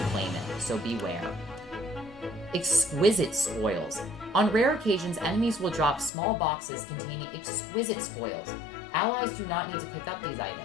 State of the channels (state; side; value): drops out; right; at 6.1 s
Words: claim it, so beware. Exquisite spoils. On rare occasions, enemies will drop small boxes containing exquisite spoils. Allies do not need to pick up these